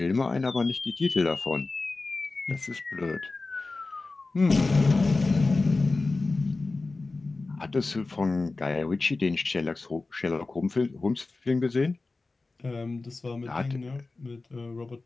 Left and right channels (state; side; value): quieter; right; 3.5 dB